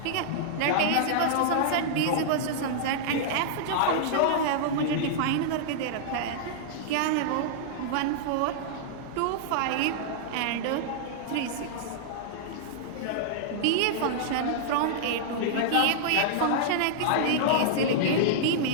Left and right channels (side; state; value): both; different; correlation -0.02